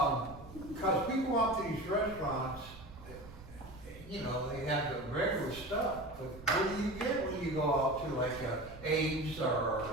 Cause we go out to these restaurants, they have the regular stuff, but what do you get when you go out to like Ames or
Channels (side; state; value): right; noise; rumble, 16 dB below the sound